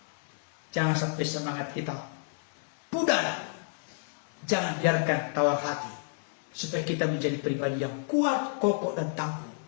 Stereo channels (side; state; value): right; silent; 58 dB below the other